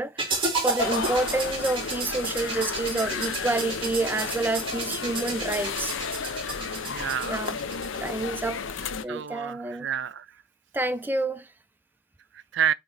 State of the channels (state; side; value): normal; both; correlation 0.42